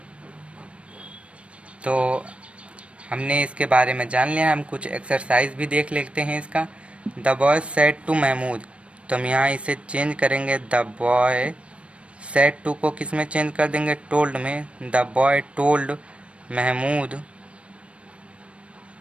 तो हमने इसके बारे में जान लिया, हम कुछ एक्सरसाइज भी देख लेते हैं इसका। The boy said to Mahmood, तो हम यहाँ इसे चेंज करेंगे, द बॉय सेड टू को किस में चेंज कर देंगे, टोल्ड में। The boy told Mahmood,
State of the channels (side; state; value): left; late; 0.061 ms